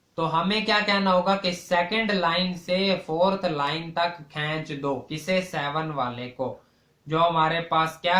तो हमें क्या कहना होगा कि सेकंड लाइन से फोर्थ लाइन तक खींच दो, किसे, 7 वाले को। जो हमारे पास क्या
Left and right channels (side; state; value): both; identical; correlation 1.00